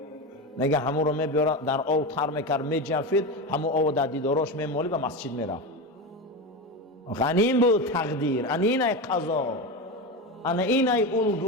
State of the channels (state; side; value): normal; both; correlation 0.20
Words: میگه همون رو میبیاره در آب تر میکرد میجفید، همون آب در دیداراش میمالی و مسجد میرفت. این بود تقدیر، این ای قضا، این ای